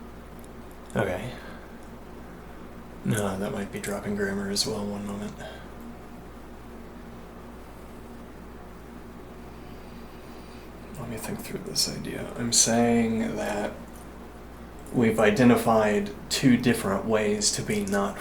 Okay. No, that might be dropping grammar as well. One moment. Let me think through this idea. I'm saying that we've identified two different ways to be not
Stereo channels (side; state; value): both; identical; correlation 1.00